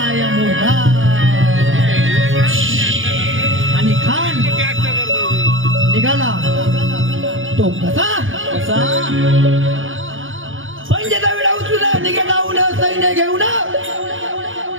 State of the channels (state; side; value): late; left; 0.58 ms